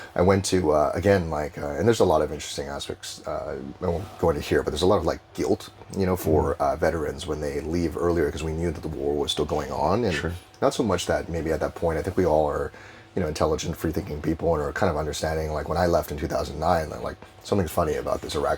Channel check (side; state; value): both; identical; correlation 1.00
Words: I went to again and there's a lot of interesting aspects. I won't go into here, but there's a lot of like guilt, for veterans when they leave earlier because we knew that the war was still going on, and not so much that maybe at that point. I think we all are, intelligent, free-thinking people and are kind of understanding. Like when I left in 2009, like something's funny about this